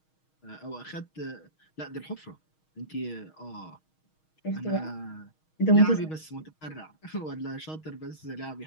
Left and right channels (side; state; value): right; late; 6.4 ms